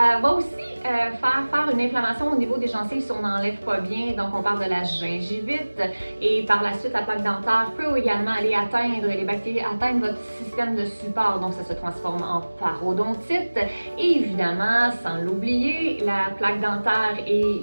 va aussi faire une inflammation au niveau des gencives si on n'enlève pas bien, donc on parle de la gingivite. Et par la suite, la plaque dentaire peut également aller atteindre les bactéries, atteindre votre système de support, donc ça se transforme en parodontite. Et évidemment, sans l'oublier, la plaque dentaire et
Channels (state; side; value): inverted; both; correlation -1.00